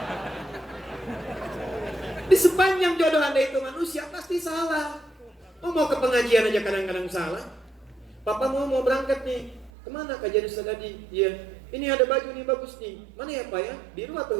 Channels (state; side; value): drops out; left; at 9.7 s